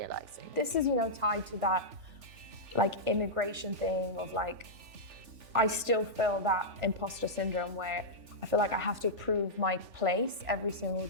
This is, tied to that immigration thing of I still feel that imposter syndrome where I feel like I have to prove my place every single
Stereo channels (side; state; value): left; late; 3.4 ms